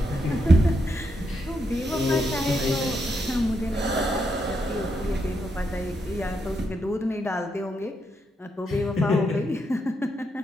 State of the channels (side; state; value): both; normal; correlation 0.80